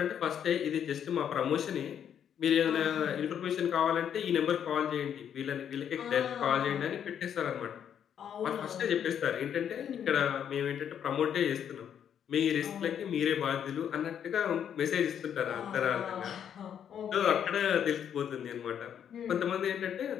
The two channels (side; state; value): right; quieter; 8.9 dB